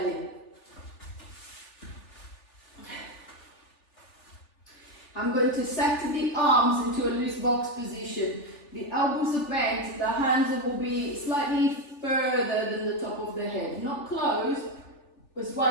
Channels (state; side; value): late; right; 3.4 ms